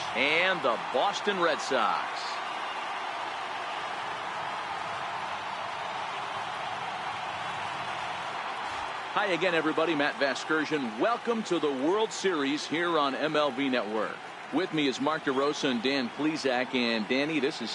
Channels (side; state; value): both; identical; correlation 1.00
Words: and the Boston Red Sox. Hi again, everybody. Matt Vasgersian. Welcome to the World Series here on MLB Network. With me is Mark DeRosa and Dan Plesac. And Danny, this is